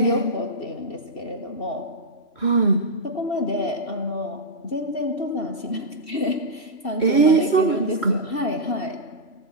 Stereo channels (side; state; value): right; late; 3.0 ms